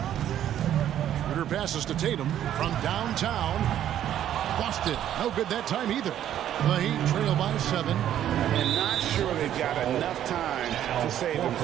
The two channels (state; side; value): quieter; left; 11.1 dB